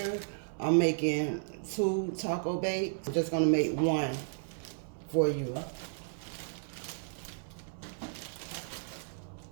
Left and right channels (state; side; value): silent; left; 55 dB below the other